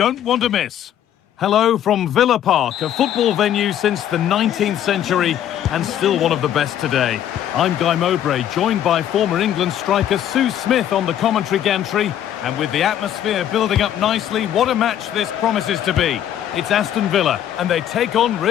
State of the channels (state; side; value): quieter; right; 10.7 dB